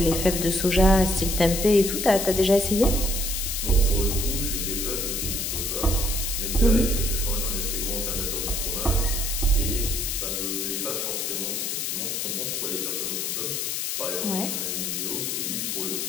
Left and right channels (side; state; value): left; noise; hiss, 1 dB below the sound